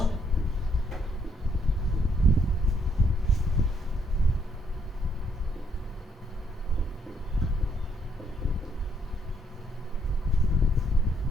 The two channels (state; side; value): normal; both; correlation 0.71